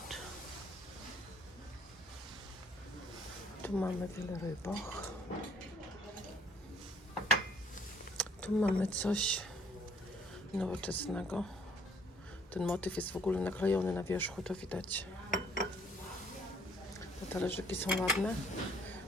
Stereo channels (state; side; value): normal; both; correlation 0.61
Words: Tu mamy wiele rybach. Tu mamy coś nowoczesnego. Ten motyw jest w ogóle naklejony na wierzchu, to widać. Te talerzyki są ładne,